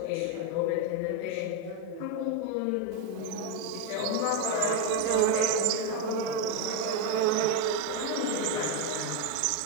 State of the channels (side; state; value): both; different; correlation 0.03